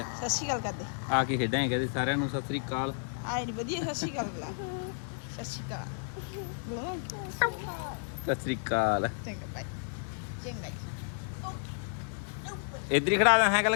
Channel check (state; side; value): silent; right; digital silence